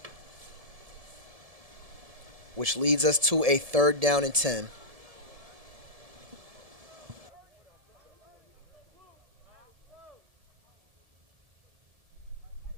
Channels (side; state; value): left; late; 1.7 ms